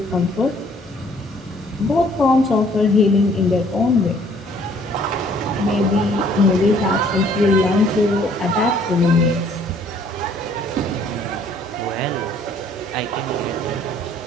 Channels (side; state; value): both; normal; correlation 0.60